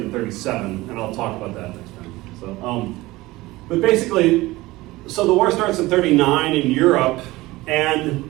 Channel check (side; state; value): left; quieter; 19.4 dB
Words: in 37, and I'll talk about that next time. So, but basically, so the war starts in 39 in Europe,